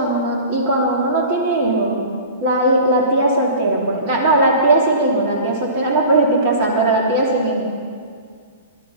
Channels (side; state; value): both; inverted; correlation -0.39